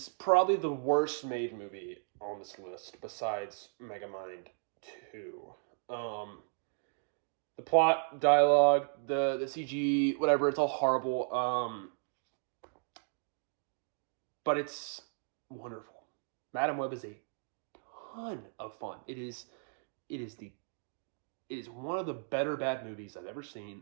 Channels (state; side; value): silent; left; digital silence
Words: probably the worst made movie on this list, besides Megamind 2. The plot, dialogue, the CG, whatever, it's all horrible. But it's wonderful. Madam Web is a ton of fun. It is one of the better bad movies I've ever